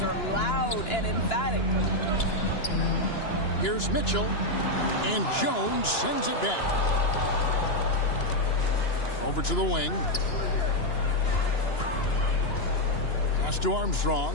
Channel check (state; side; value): late; right; 2.9 ms